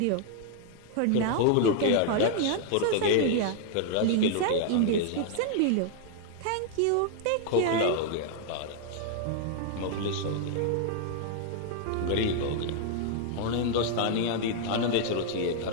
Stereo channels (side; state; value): both; different; correlation 0.00